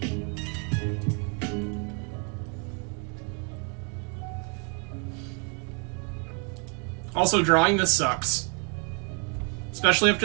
Also, drawing this sucks. Especially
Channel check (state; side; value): quieter; left; 37.5 dB